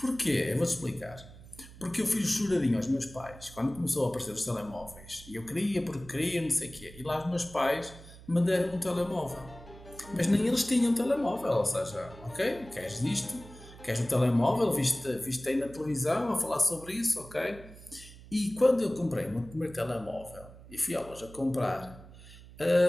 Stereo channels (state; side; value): noise; right; hum, 18 dB below the sound